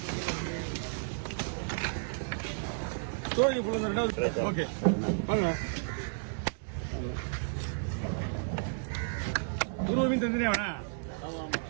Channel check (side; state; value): left; silent; digital silence